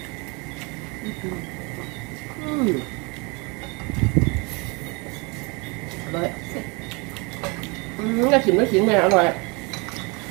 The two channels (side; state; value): left; quieter; 29.7 dB